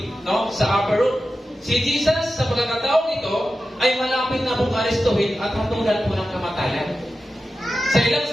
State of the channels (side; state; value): both; normal; correlation 0.92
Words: no, sa upper room. Si Jesus, sa pagkakataong ito, ay malapit na pong arestuhin at hatulan po ng kamatayan. Sa ilang